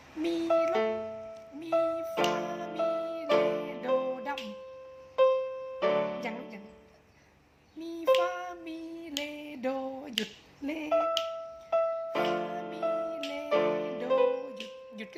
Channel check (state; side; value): identical; both; correlation 1.00